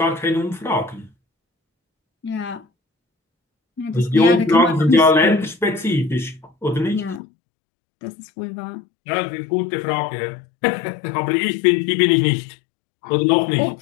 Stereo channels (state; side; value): drops out; right; at 7.2 s